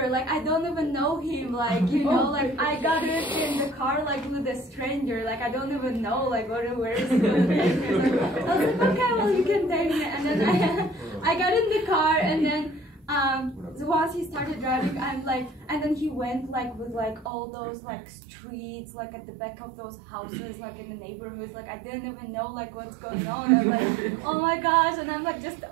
like I don't even know him, like, you know, like I got it in the car like with a stranger, like I don't even know like where is he going to take me. So I was like, okay, well you can take me. And then I got in the car, and then so once he started driving, I'm like, and then he went like with like all those like streets like at the back of those houses like in the neighborhoods, like I didn't even know like what's going on. I'm like, oh my gosh. And I'm like just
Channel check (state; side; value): drops out; left; at 17.3 s